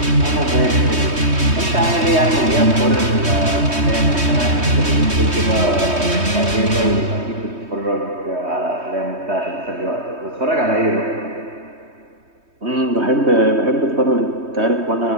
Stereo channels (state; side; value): late; left; 3.2 ms